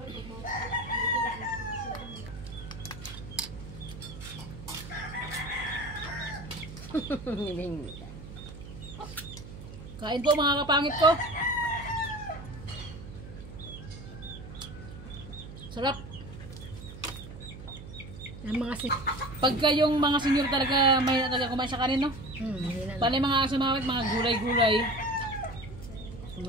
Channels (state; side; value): noise; right; hum, 13 dB below the sound